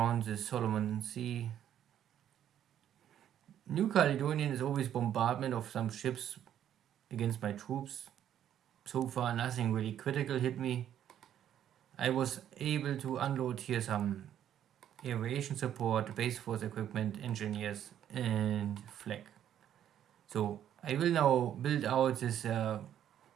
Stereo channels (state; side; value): quieter; left; 10.4 dB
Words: the Solomon Sea. New Caledonian is always bombardment of some ships against my troops. So far nothing really critical hit me. I was able to unload here some aviation support, base force equipment, engineers, and flag. So I will now build out this